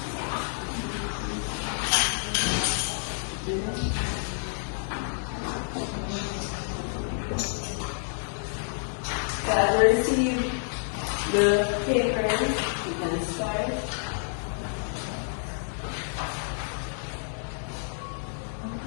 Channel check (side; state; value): right; silent; digital silence